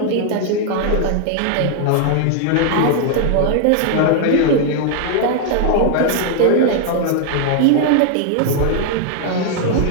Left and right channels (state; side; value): different; both; correlation 0.00